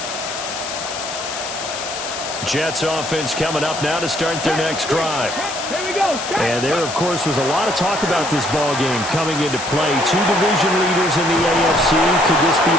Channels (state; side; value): noise; left; hiss, 7 dB below the sound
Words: Jets offense coming up now to start their next drive. And there, of course, was a lot of talk about this ball game coming into play. 2 division leaders in the AFC. Could this be